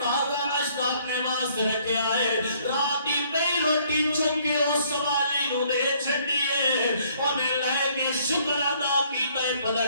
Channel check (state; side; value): inverted; both; correlation -0.63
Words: ناشتہ اپنے واسطے رکھیا ہے رات دی پئی روٹی چک کے اس سوالی نو دے چھڈی ہے انہیں لے کے شکر ادا کیتا ہے